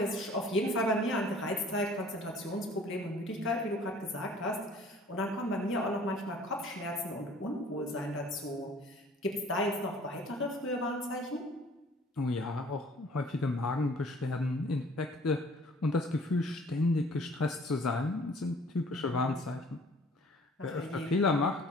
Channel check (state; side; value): normal; both; correlation 0.53